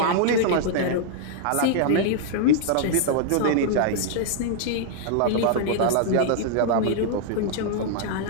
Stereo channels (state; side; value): different; both; correlation -0.01